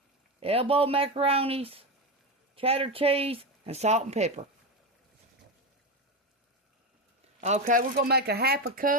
elbow macaronis, cheddar cheese, and salt and pepper. Okay, we're going to make a half a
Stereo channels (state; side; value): normal; both; correlation 0.15